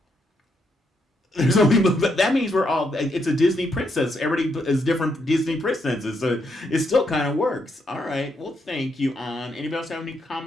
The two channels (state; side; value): normal; both; correlation 0.78